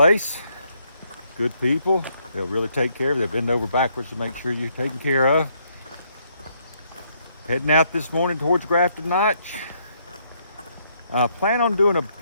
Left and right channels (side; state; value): both; inverted; correlation -0.72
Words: good people. They'll really take care of you. They'll bend over backwards to make sure you're taken care of. Heading out this morning towards Grafton Notch. Plan on doing